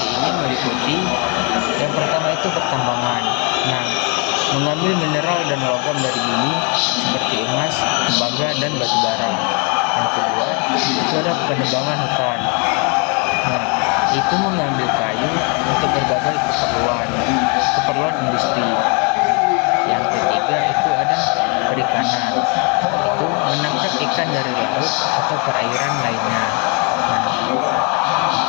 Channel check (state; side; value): quieter; right; 34.9 dB